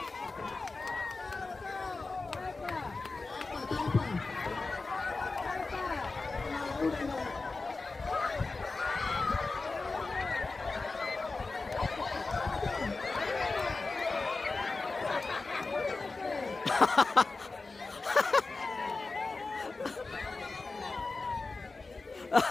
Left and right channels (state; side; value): quieter; right; 3.7 dB